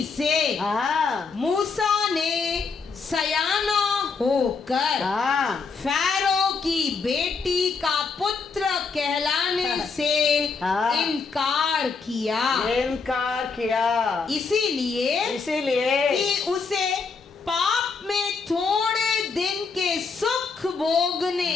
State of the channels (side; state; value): right; quieter; 4.9 dB